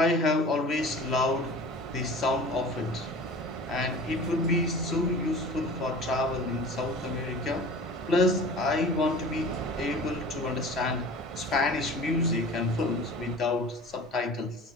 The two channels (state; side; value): normal; both; correlation 0.40